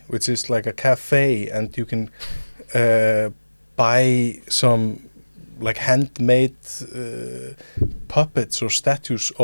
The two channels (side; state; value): both; inverted; correlation -1.00